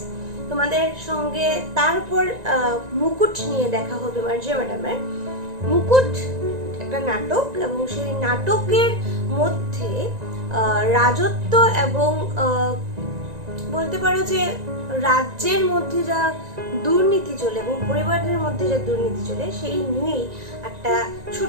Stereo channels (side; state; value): left; late; 1.9 ms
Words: তোমাদের সঙ্গে। তারপর মুকুট নিয়ে দেখা হবে মার্জিয়া ম্যাডামের। মুকুট একটা নাটক এবং সেই নাটকের মধ্যে রাজত্ব এবং বলতে পারো যে রাজ্যের মধ্যে যা দুর্নীতি চলে এবং পরিবারের মধ্যে যা দুর্নীতি চলে সেই নিয়েই একটা